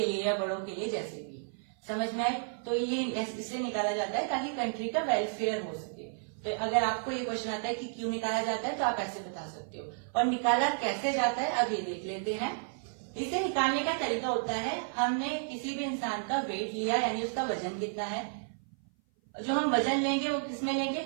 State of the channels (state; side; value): silent; left; 55 dB below the other